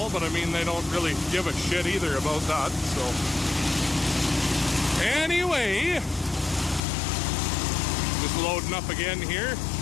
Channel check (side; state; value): right; drops out; at 6.8 s